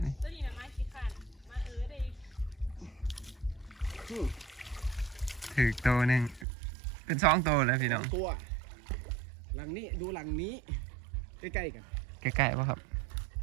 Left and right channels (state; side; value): drops out; left; at 6.5 s